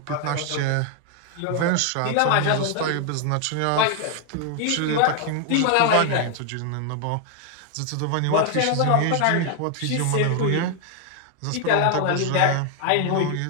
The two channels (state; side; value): different; both; correlation 0.00